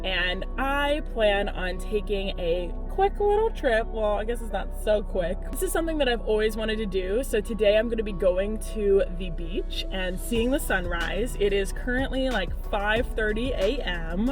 and I plan on taking a quick little trip. Well, I guess it's not so quick. This is something that I've always wanted to do. So today I'm going to be going to the beach and seeing the sunrise. It is currently like 5:30 a.m.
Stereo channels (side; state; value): both; identical; correlation 1.00